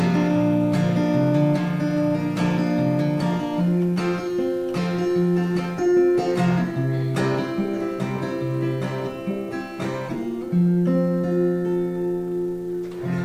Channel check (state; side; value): identical; both; correlation 1.00